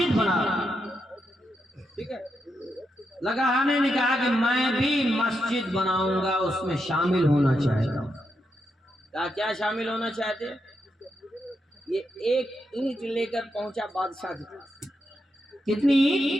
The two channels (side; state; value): both; normal; correlation 0.83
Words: بنا، ٹھیک ہے؟ لکڑہارے نے کہا کہ میں بھی مسجد بناؤں گا، اس میں شامل ہونا چاہتا ہوں۔ کیا شامل ہونا چاہتے؟ یہ ایک اینٹ لے کر پہنچا بادشاہ کی طرف۔ کتنی